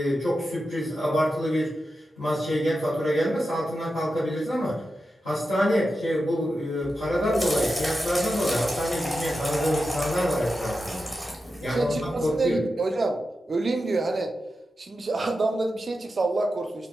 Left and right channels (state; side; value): normal; both; correlation 0.90